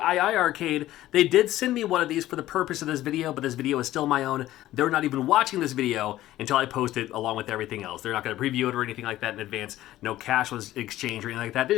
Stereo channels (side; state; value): right; quieter; 14.7 dB